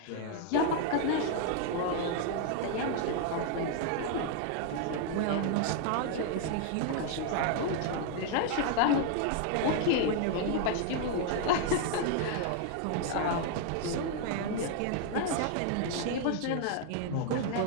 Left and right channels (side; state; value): both; different; correlation 0.00